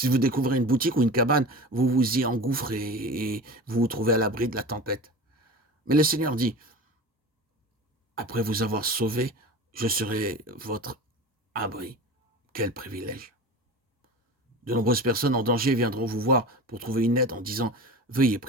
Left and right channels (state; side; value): normal; both; correlation 0.32